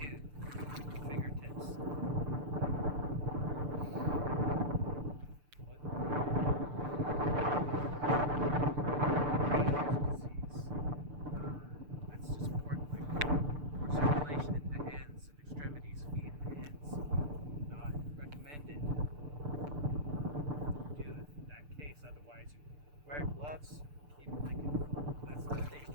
fingertips. That's just important, like more circulation into hands and extremities, feet and hands. Not recommended. Do in that case, otherwise you wear gloves. Keep like that's another thing. You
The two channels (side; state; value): left; late; 6.8 ms